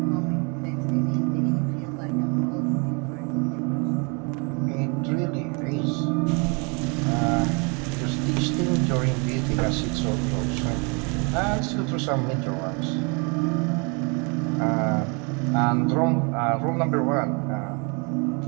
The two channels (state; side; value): quieter; left; 32.9 dB